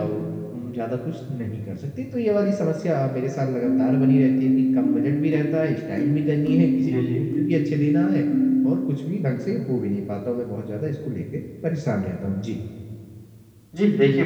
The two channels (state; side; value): identical; both; correlation 1.00